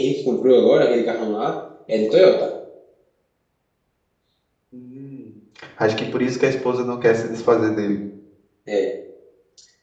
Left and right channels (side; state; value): both; identical; correlation 1.00